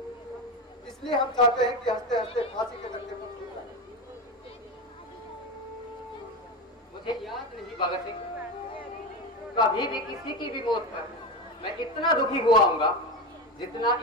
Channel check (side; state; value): both; normal; correlation 0.19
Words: इसलिए हम चाहते हैं कि हंसते हंसते फांसी के धक्के पर छूट जाए। मुझे याद नहीं भगत सिंह, कभी भी किसी की भी मौत पर मैं इतना दुखी हुआ हूँगा जितना